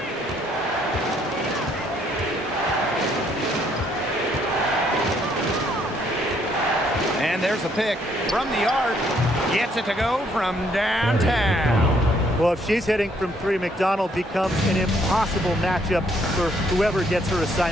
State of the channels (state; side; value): normal; both; correlation 0.68